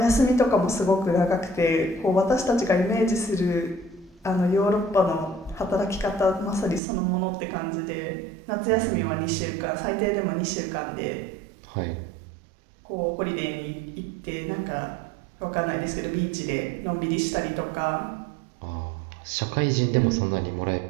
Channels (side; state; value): left; drops out; at 6.8 s